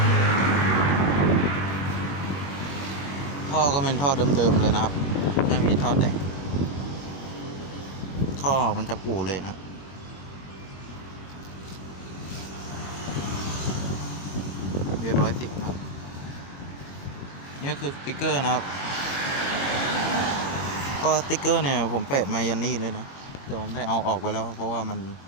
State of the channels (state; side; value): late; right; 21 ms